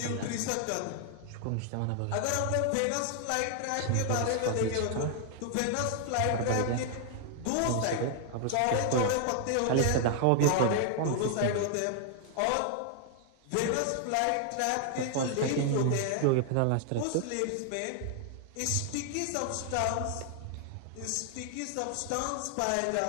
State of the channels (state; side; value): different; both; correlation 0.00